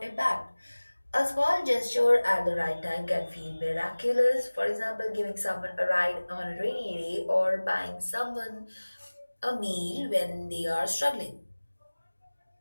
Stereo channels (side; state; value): both; inverted; correlation -1.00